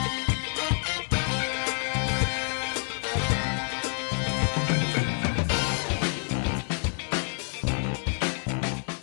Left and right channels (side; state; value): right; silent; digital silence